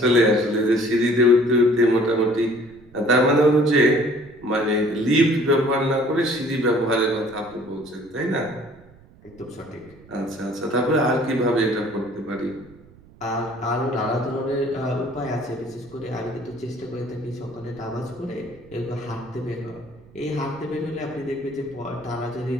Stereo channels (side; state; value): right; noise; rumble, 25 dB below the sound